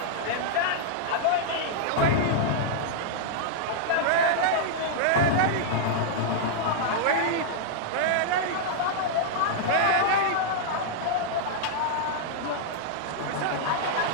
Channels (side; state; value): both; different; correlation -0.01